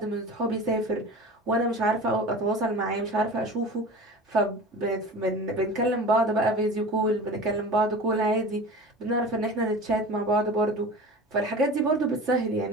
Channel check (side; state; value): both; normal; correlation 0.35